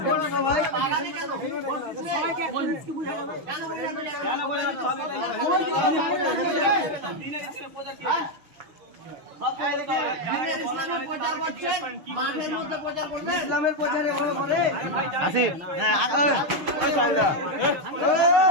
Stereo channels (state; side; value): late; left; 6.5 ms